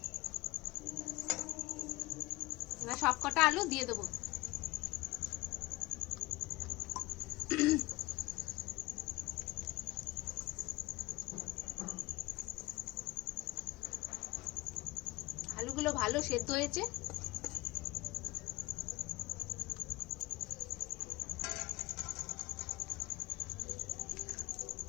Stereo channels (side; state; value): right; quieter; 21.3 dB